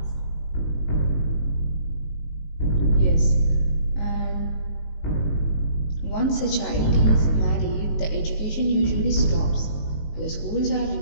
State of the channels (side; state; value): right; late; 19 ms